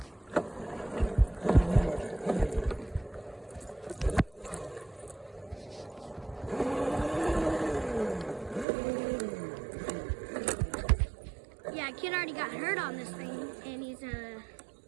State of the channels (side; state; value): left; drops out; at 8.7 s